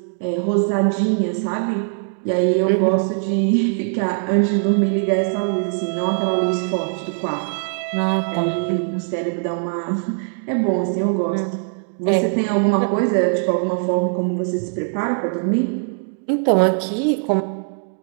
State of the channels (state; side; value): silent; left; digital silence